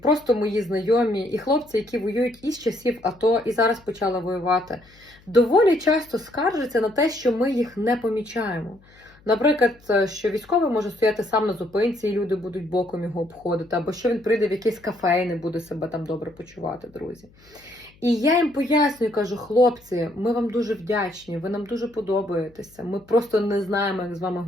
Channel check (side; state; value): left; noise; hum, 28 dB below the sound